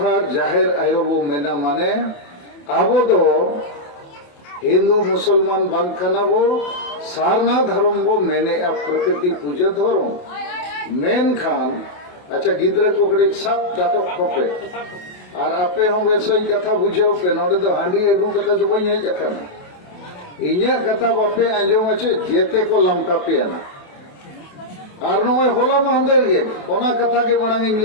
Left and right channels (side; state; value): right; late; 28 ms